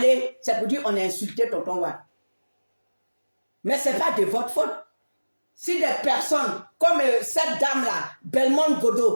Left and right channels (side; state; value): both; inverted; correlation -1.00